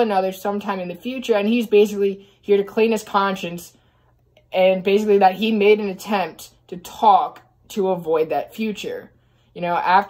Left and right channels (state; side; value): identical; both; correlation 1.00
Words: sometime in the future, and he's basically here to clean his conscience, and basically that he made an attempt to talk to avoid that future. You know,